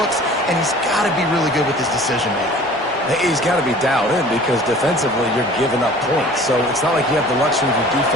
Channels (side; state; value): both; normal; correlation 0.46